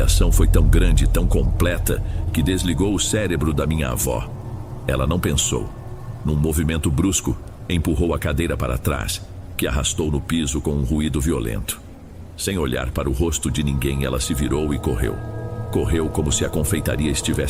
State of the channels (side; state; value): both; identical; correlation 1.00